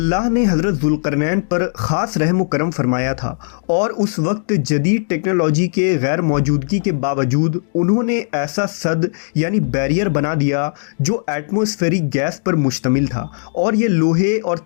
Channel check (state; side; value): silent; right; digital silence